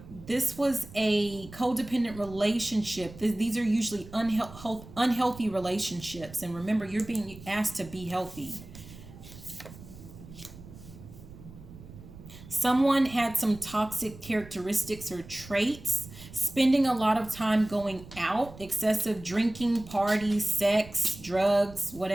this was a codependent relationship. These are usually unhealthy relationships. And remember, you're being asked to be healthy. Someone had some toxic characteristics or traits, spending a lot of time going out, excessive drinking, parties, sex, drugs,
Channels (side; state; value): right; noise; rumble, 17 dB below the sound